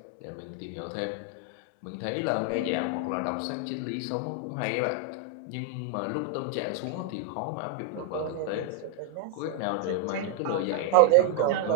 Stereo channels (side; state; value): both; different; correlation 0.00